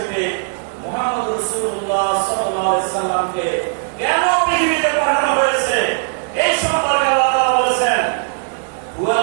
মুহাম্মদ রাসূলুল্লাহ সাল্লাল্লাহু আলাইহি সাল্লামকে কেন পৃথিবীতে পাঠানো হয়েছে এই সম্পর্কে আল্লাহ তাআলা বলেছেন,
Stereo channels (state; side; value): silent; left; 67 dB below the other